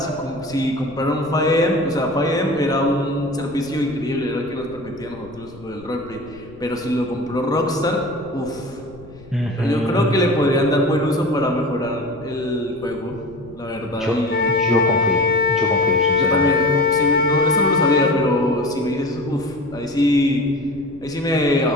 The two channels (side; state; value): left; noise; rumble, 21 dB below the sound